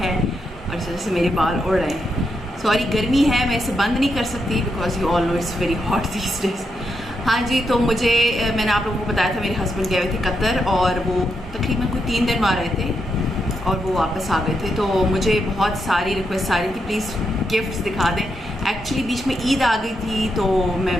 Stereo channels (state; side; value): normal; both; correlation 0.82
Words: है और इस वजह से मेरे बाल उड़ रहे हैं। सॉरी, गर्मी है, मैं इसे बंद नहीं कर सकती because you all know it's very hot these days. हाँ जी, तो मैंने आप लोगों को बताया था मेरे हस्बैंड गए हुए थे कतर और वो तकरीबन कोई 3 दिन वहाँ रहे थे और वो वापस आ गए थे। तो मुझे बहुत सारी रिक्वेस्ट आ रही थी प्लीज़ गिफ्ट्स दिखा दें। एक्चुअली बीच में ईद आ गई थी तो मैं